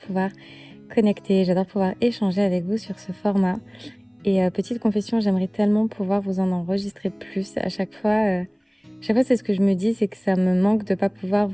connecter, j'adore pouvoir échanger avec vous sur ce format. Et petite confession, j'aimerais tellement pouvoir vous en enregistrer plus. À chaque fois c'est ce que je me dis, c'est que ça me manque de pas pouvoir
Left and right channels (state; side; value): identical; both; correlation 1.00